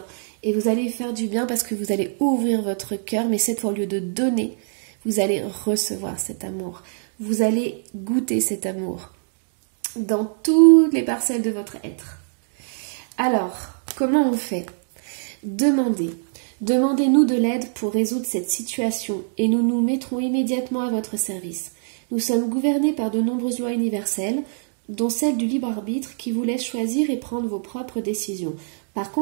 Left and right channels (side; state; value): left; silent; digital silence